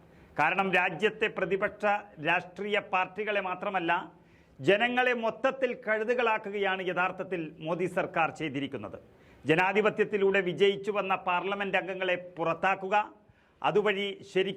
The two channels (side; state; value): both; identical; correlation 1.00